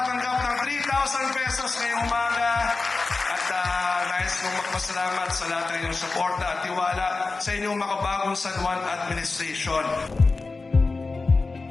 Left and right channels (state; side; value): quieter; right; 3.8 dB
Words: ng 3,000 pesos ngayong umaga. At nais kong magpasalamat sa lahat ng inyong suporta at tiwala sa inyong makabagong San Juan Administration.